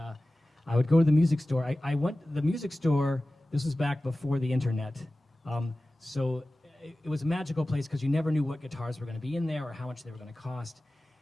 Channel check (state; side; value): normal; both; correlation 0.96